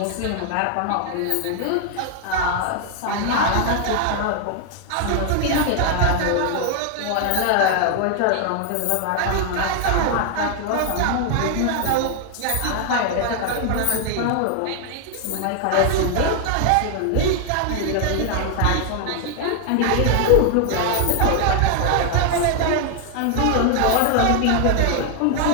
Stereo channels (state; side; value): different; both; correlation 0.00